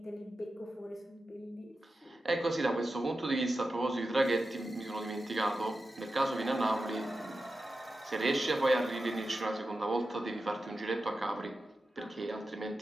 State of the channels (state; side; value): normal; both; correlation 0.92